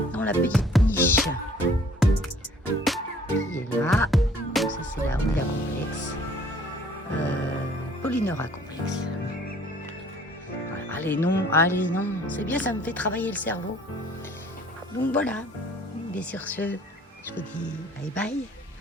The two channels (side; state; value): both; normal; correlation 0.56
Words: dans la petite niche qui est là. Donc, ça c'est la Honda Complex. Polynora Complex. Allez non, c'est bien, ça me fait travailler le cerveau. Donc voilà, et sur ce, je vous dis bye bye,